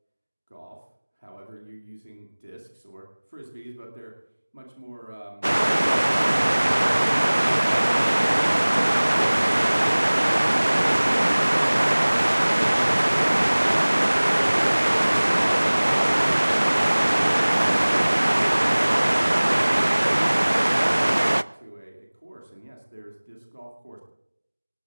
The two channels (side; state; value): both; inverted; correlation -1.00